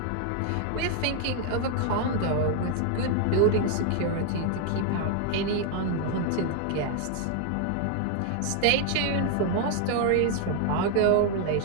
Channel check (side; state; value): both; different; correlation 0.00